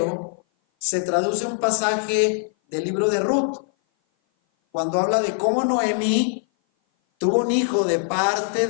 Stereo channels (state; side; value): silent; right; 57 dB below the other